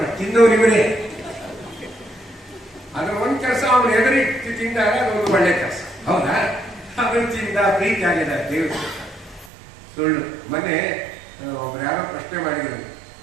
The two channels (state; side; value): drops out; left; at 9.5 s